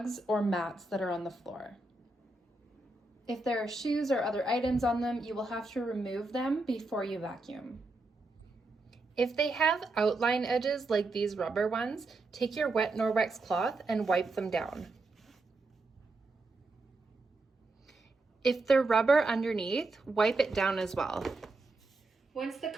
or mats that are on the floor. If there are shoes or other items on them, you will have to remove them before you vacuum. If they have outline edges like these rubber ones, take your wet Norwex cloth and wipe them down. If they're rubber underneath, wipe it down as well. Once the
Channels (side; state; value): left; quieter; 3.1 dB